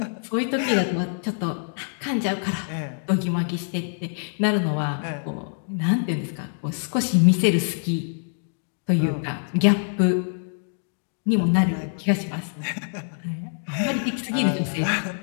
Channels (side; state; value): right; silent; digital silence